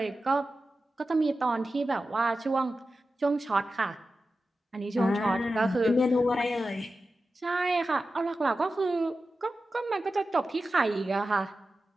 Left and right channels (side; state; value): both; normal; correlation 0.93